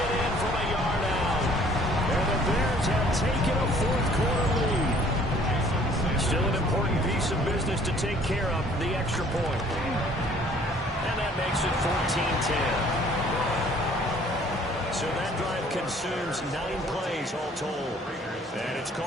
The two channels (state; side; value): normal; both; correlation 0.57